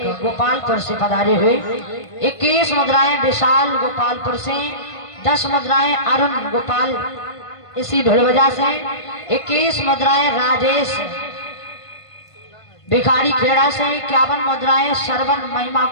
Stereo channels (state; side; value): late; right; 1.5 ms